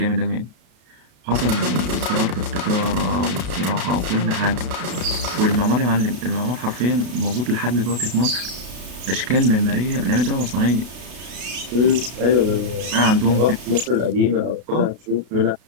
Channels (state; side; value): late; left; 33 ms